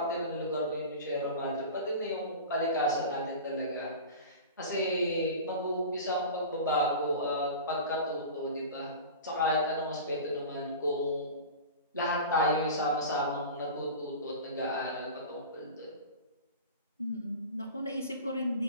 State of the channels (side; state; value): both; inverted; correlation -0.33